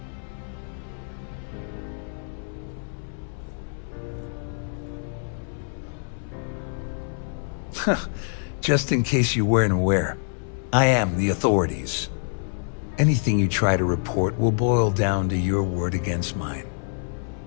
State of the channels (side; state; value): right; silent; 61 dB below the other